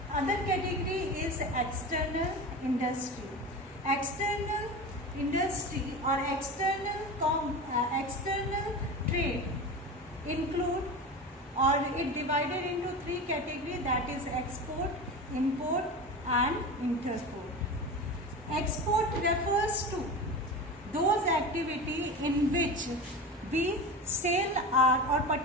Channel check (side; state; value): both; normal; correlation 0.28